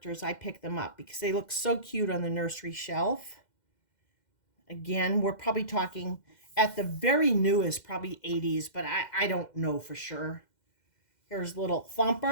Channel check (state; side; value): late; right; 2.1 ms